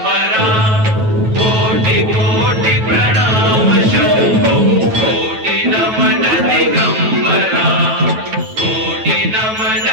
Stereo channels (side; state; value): left; late; 9.2 ms